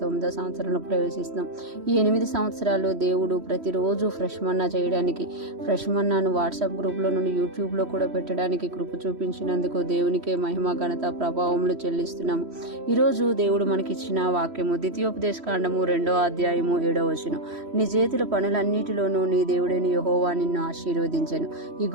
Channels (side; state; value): left; late; 3.1 ms